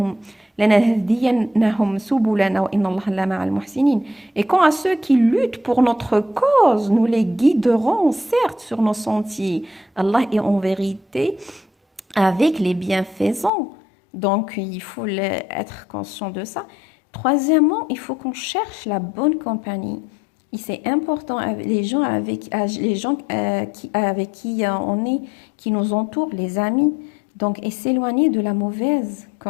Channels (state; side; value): drops out; right; at 13.5 s